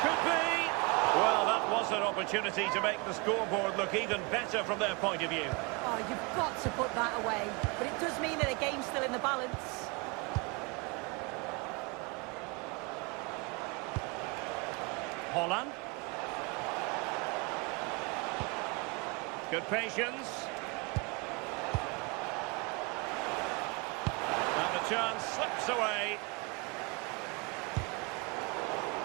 Could be! Well, that was an opportunity to make the scoreboard look even better from their point of view. Oh, you've got to put that away. But it does mean that the game's still in the balance. Haaland. Good patience. And the chance slips away.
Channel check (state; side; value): quieter; left; 29.5 dB